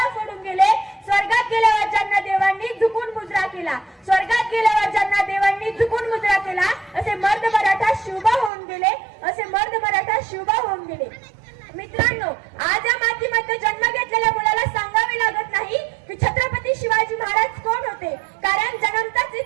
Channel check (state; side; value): drops out; left; at 8.5 s